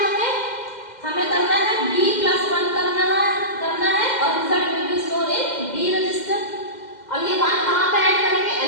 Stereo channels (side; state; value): right; late; 2.1 ms